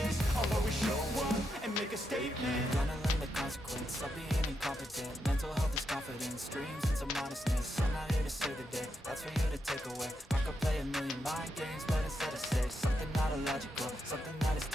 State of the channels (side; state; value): both; normal; correlation 0.83